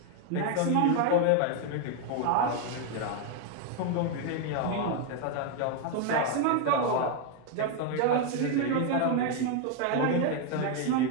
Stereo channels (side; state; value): both; different; correlation 0.01